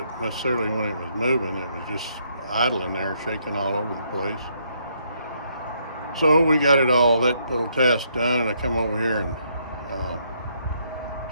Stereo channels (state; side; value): inverted; both; correlation -0.73